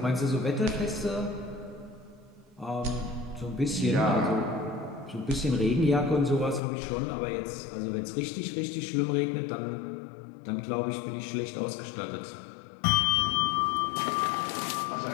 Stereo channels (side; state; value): right; drops out; at 6.6 s